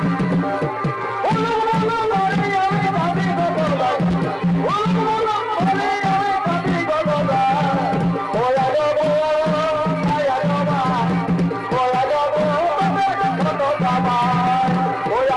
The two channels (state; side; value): identical; both; correlation 1.00